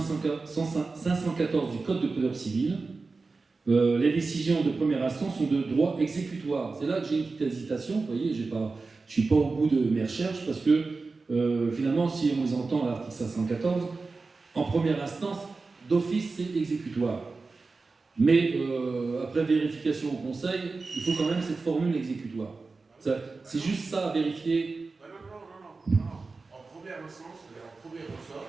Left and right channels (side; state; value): left; quieter; 4.0 dB